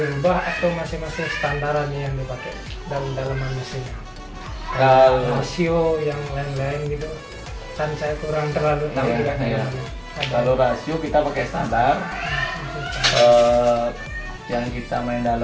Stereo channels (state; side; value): identical; both; correlation 1.00